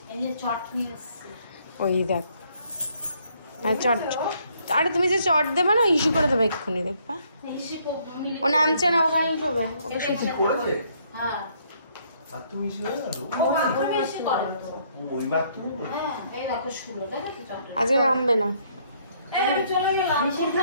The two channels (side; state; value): both; inverted; correlation -0.67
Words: ওই দেখ চট, আরে তুমি যে চট দেবে না ইস্যু করে দেবে এক্ষুনি, দেখবা ও নামছে না, ওখানে শোবে। ওকে আজকে নামবে না।